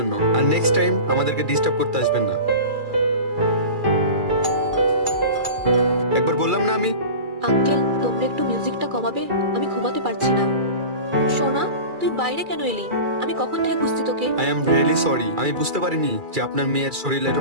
আর নেক্সট টাইম আমাদেরকে ডিস্টার্ব করতে আসবেন না। একবার বললাম না আমি। আঙ্কেল, তোমরা একটু মিউজিকটা কমাবে? আমি ঘুমাতে পারছি না। সোনা, তুই বাইরে কেন এলি? আমি কখন থেকে খুঁজছি তোকে। আই এম রিয়েলি সরি, আমি বুঝতে পারিনি যে আপনার মেয়ের শরীরের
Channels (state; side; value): late; left; 2.3 ms